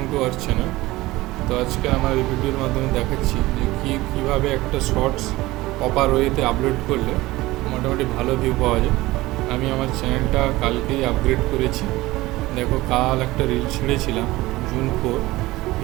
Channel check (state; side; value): quieter; left; 18.9 dB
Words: to our channel. তো আজকে আমার এই ভিডিওর মাধ্যমে দেখাচ্ছি যে কীভাবে একটা শর্টস প্রপার ওয়েতে আপলোড করলে মোটামুটি ভালো ভিউ পাওয়া যায়। আমি আমার চ্যানেলটা কালকেই আপগ্রেড করেছি। দেখো কাল একটা রিল ছেড়েছিলাম জুন 4,